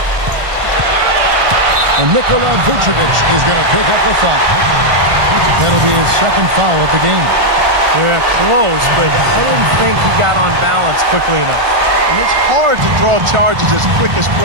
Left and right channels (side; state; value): left; late; 1.4 ms